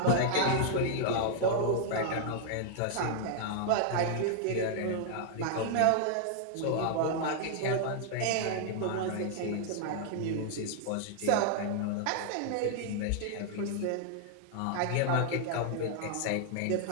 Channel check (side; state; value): both; different; correlation -0.01